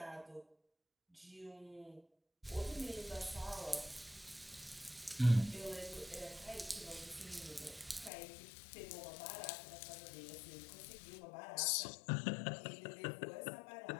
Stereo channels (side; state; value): right; drops out; at 8.1 s